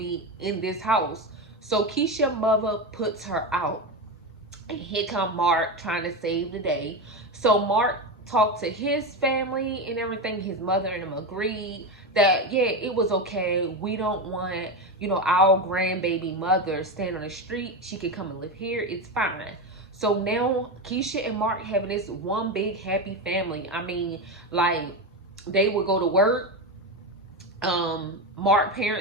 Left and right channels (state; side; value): normal; both; correlation 0.16